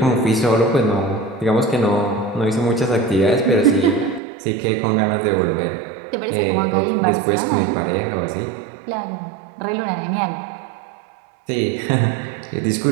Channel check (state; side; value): drops out; left; at 4.2 s